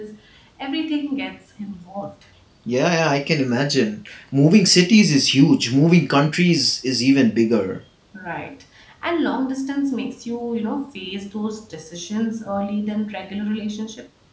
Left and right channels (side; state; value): both; identical; correlation 1.00